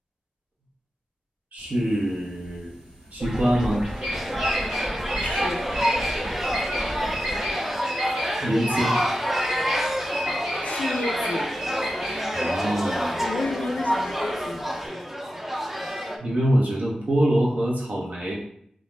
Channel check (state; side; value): normal; both; correlation 0.91